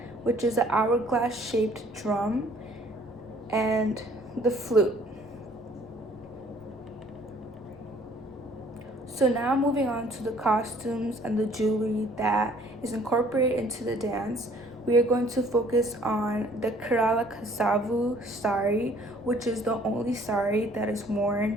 which is an hourglass shaped drum, and the flute. So now moving on to the costumes and the jewelry that is incorporated into the dance, we are going to focus on the Kerala Kasavu sari, which is the only sari that is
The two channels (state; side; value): noise; left; rumble, 25 dB below the sound